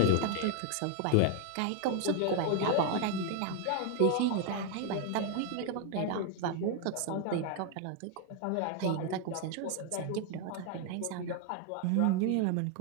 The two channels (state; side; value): different; both; correlation 0.01